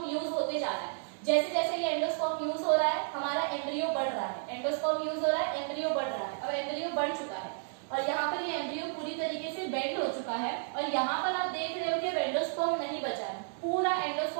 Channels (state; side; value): silent; left; digital silence